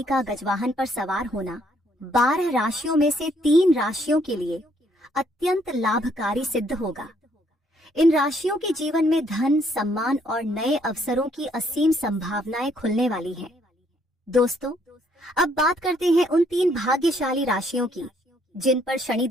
का गजवाहन पर सवार होना 12 राशियों में से 3 राशियों के लिए अत्यंत लाभकारी सिद्ध होगा। इन राशियों के जीवन में धन, सम्मान और नए अवसरों की असीम संभावनाएं खुलने वाली हैं। दोस्तों, अब बात करते हैं उन 3 भाग्यशाली राशियों की जिन पर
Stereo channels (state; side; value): normal; both; correlation 0.68